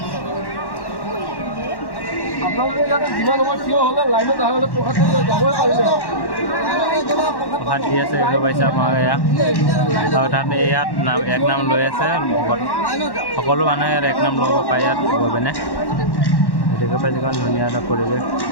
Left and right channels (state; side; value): late; right; 1.1 ms